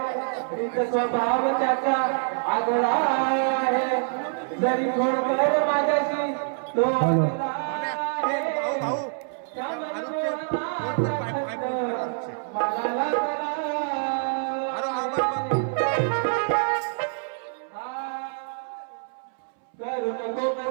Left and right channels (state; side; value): silent; left; 61 dB below the other